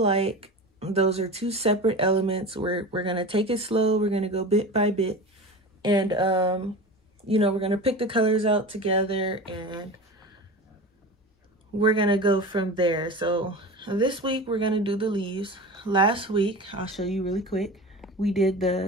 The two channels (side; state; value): both; normal; correlation 0.31